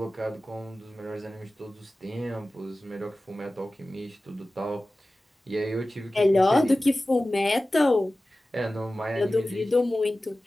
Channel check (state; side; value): normal; both; correlation 0.96